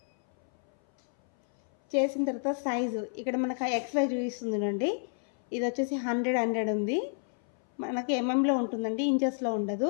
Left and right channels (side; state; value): right; silent; 57 dB below the other